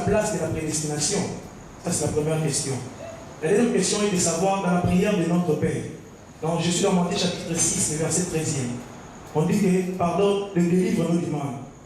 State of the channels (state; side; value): identical; both; correlation 1.00